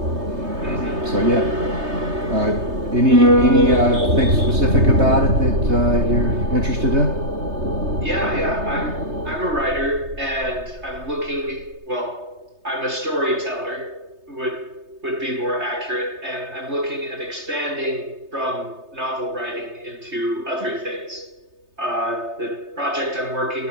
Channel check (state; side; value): late; left; 3.3 ms